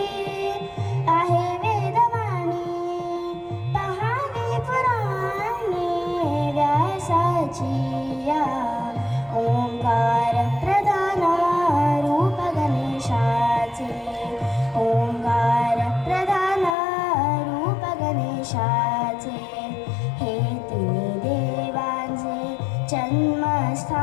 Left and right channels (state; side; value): drops out; right; at 16.8 s